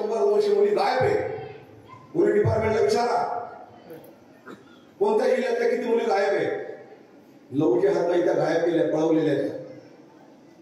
मुली गायब आहे. पोलीस डिपार्टमेंटला विचारा, कोणत्या जिल्ह्यातल्या किती मुली गायब आहे, लवचे हात नाही त्या गायब केल्या, पळवलेल्या आहेत.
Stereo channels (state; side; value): identical; both; correlation 1.00